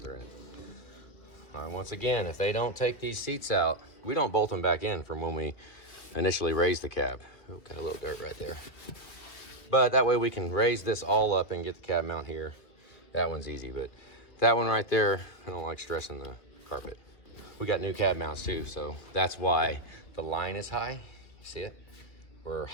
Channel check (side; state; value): right; late; 2.5 ms